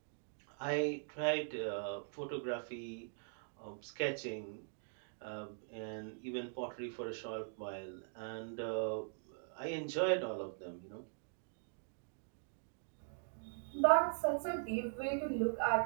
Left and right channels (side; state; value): left; silent; digital silence